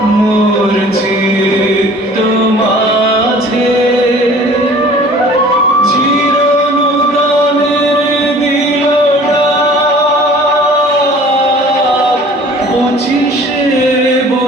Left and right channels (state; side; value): normal; both; correlation 0.48